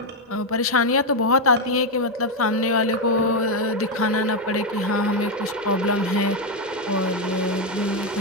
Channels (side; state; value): both; normal; correlation 0.04